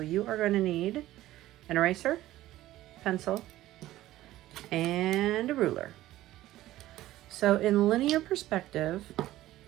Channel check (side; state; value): left; quieter; 15.3 dB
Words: you are going to need an eraser, pencil, and a ruler. So in linear perspective,